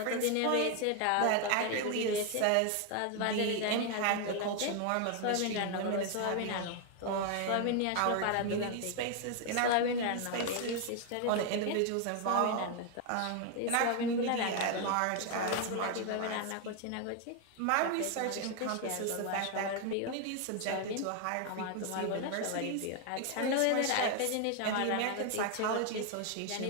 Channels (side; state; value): both; different; correlation 0.00